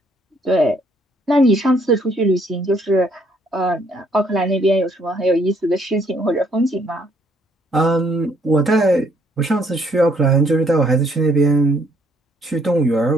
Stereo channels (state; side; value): normal; both; correlation 0.67